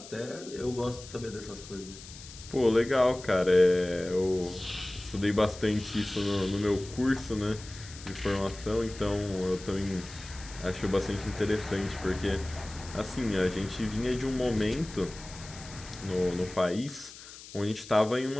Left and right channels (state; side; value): noise; left; hiss, 16 dB below the sound